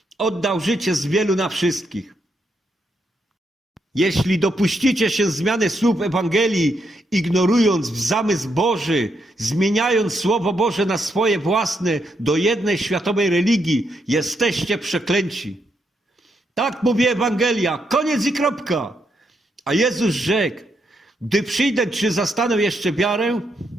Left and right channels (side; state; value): both; normal; correlation 0.79